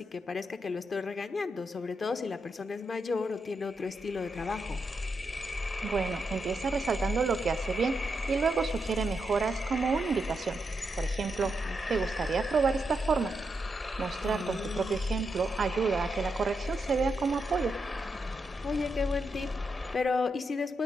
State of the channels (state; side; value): normal; both; correlation 0.84